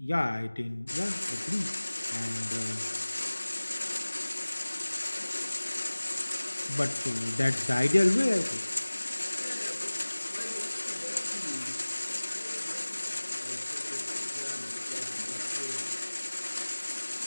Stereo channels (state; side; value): inverted; both; correlation -1.00